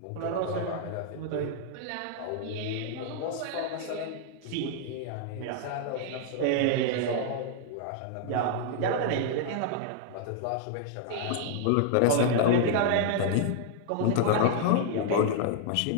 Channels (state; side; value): different; both; correlation 0.00